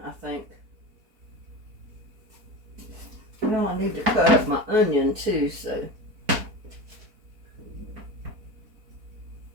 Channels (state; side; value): late; left; 4.5 ms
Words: I think. Well, I need to cut up my onion too, so.